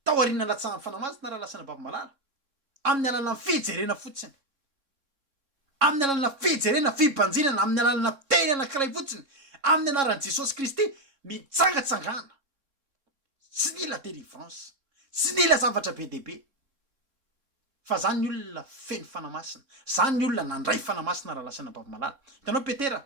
tao aoriana latsahan'ny fanamasina raha lasana bavimalala amin'ny alalana fijerena fotsiny amin'ny alalana fijerena fibanjinana amin'ny alalana teny anankiray fotsiny amin'ny anaran'i Jesosy Kristy mitsangatsangana tsy nila délivrance tsy nila zavatra be dehibe fa zany ny olona feno fanamasina zany ny olona nandray fanamasina raha lasana bavimalala hitanao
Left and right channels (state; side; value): late; left; 3.7 ms